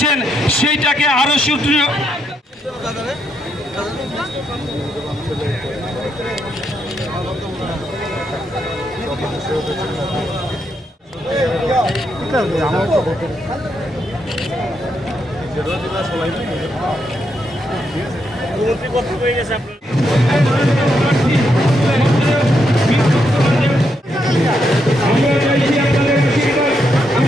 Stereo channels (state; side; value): normal; both; correlation 0.79